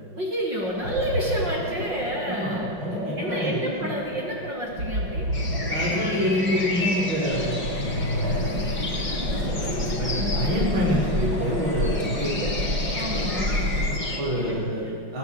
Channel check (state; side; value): late; left; 5.5 ms